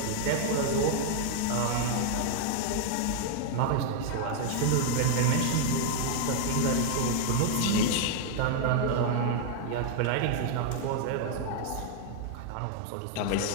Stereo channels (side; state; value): both; different; correlation 0.00